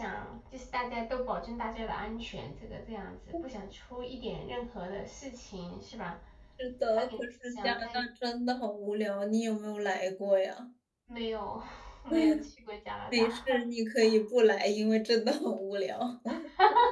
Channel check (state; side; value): identical; both; correlation 1.00